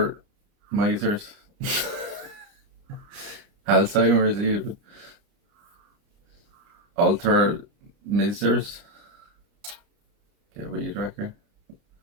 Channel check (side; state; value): left; late; 29 ms